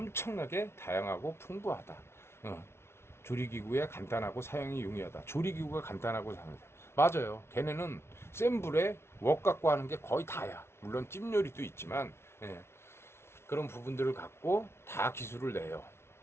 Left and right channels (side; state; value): right; late; 0.12 ms